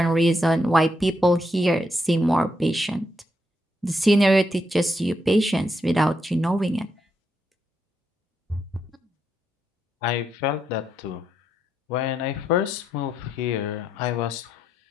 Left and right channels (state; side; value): normal; both; correlation 0.80